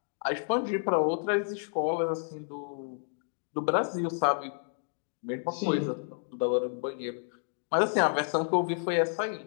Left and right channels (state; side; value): silent; right; 58 dB below the other